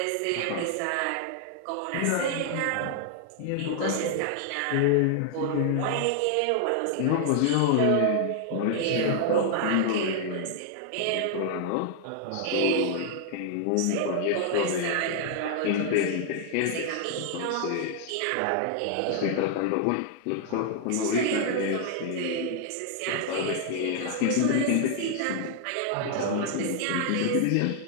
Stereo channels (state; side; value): different; both; correlation 0.00